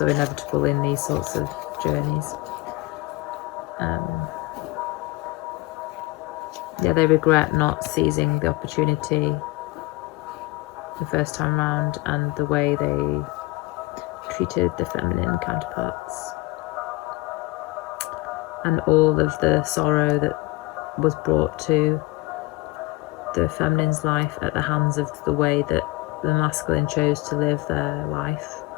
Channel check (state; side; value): quieter; right; 20.8 dB